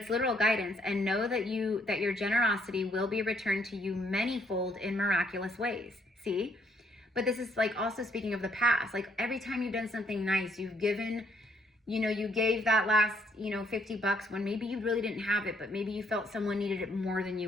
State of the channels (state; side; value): normal; both; correlation 0.69